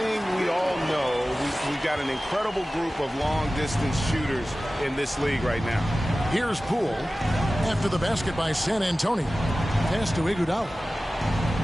we all know. We've got an incredible group of long-distance shooters in this league right now. Here's Poole after the basket by San Antonio. Pass to Iguodala.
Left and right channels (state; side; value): normal; both; correlation 0.96